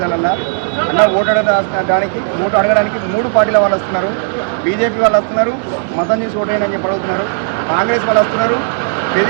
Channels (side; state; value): left; silent; digital silence